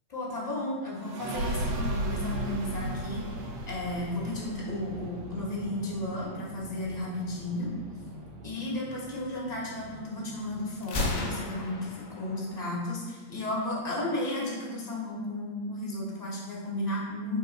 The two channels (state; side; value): late; left; 8.5 ms